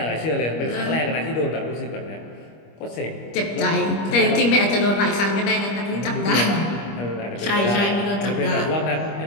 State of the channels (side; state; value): right; late; 25 ms